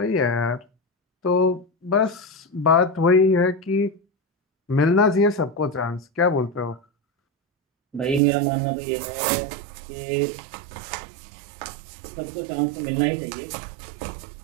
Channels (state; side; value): drops out; left; at 8.2 s